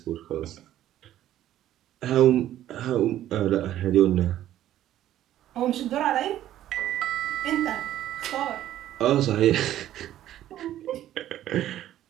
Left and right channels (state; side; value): quieter; left; 12.6 dB